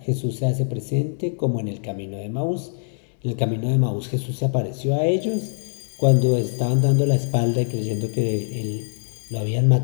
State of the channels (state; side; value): silent; right; digital silence